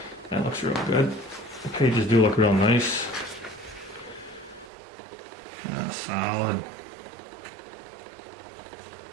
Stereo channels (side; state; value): left; drops out; at 4.7 s